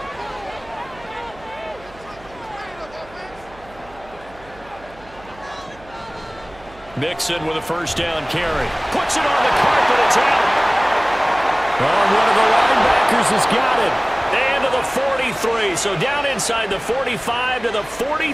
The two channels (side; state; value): right; noise; hum, 23 dB below the sound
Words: Mixon with a first down carry. Puts it on the carpet. It's out. Oh, one of the linebackers has got it. And to the 43. So down inside the 45 to the